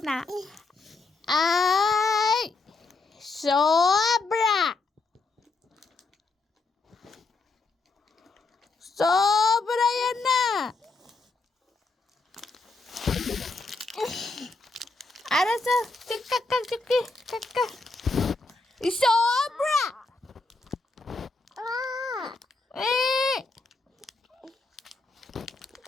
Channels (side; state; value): right; quieter; 3.7 dB